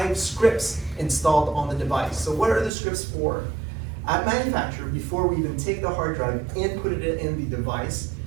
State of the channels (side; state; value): left; drops out; at 2.7 s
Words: scripts installed on the device. So what are the scripts for? At manufacture, before we even take the hard drive and put it in the device,